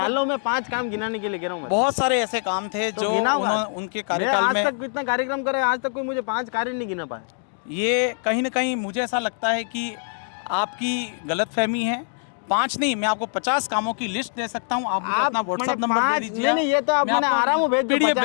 में 5 काम गिनाने के लिए कह रहा हूँ। बहुत सारे ऐसे काम थे जो उनके कार्यकाल में। आज तक कितना कार्यक्रम करे, आज तक कोई मुझे 5 कार्य नहीं गिना पाया। ये कहीं ना कहीं मुझे ऐसा लगता है कि आपकी गलतफहमी है। 5 नहीं, मैं आपको 50 कामों की लिस्ट दे सकता हूँ। आप मुझे अपना व्हाट्सएप नंबर दे दीजिए। नहीं, ये तो आप मैंने आराम से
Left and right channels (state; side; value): silent; right; digital silence